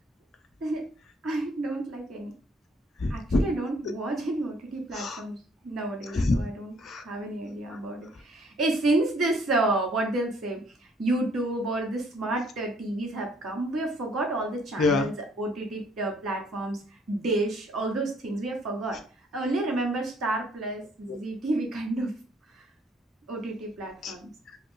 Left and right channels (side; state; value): both; normal; correlation 0.63